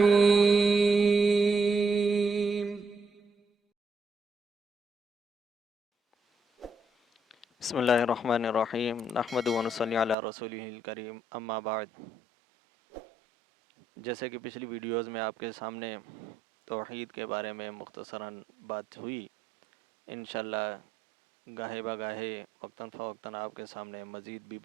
بسم اللہ الرحمن الرحیم نحمد و نصلی علی رسولہ الکریم اما بعد. جیسے کہ پچھلی ویڈیوز میں آپ کے سامنے توحید کے بارے میں مختصراً بات ہوئی، انشاءاللہ گاہے بگاہے وقتاً فوقتاً آپ کے سامنے مزید بھی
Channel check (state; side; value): drops out; left; at 10.2 s